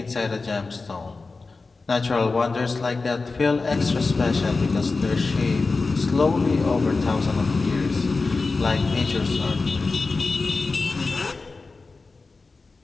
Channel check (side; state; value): right; quieter; 3.9 dB